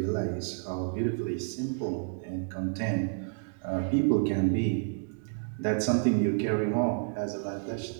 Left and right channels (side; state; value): left; silent; digital silence